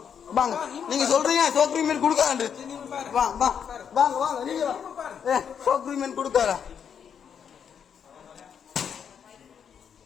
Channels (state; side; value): quieter; right; 7.7 dB